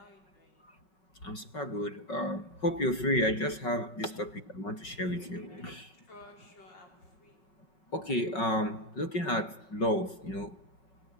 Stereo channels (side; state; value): right; late; 5.4 ms